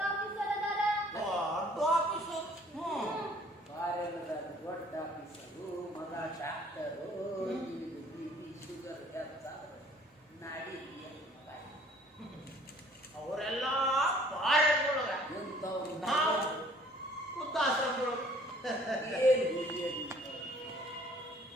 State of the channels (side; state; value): both; normal; correlation 0.56